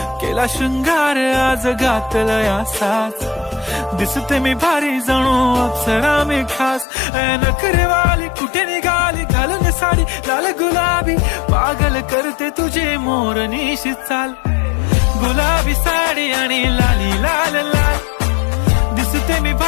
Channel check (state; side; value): drops out; right; at 6.9 s